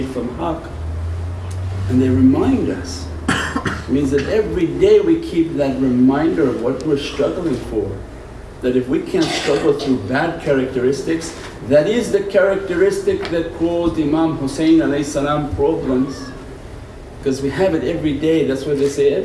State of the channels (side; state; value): both; identical; correlation 1.00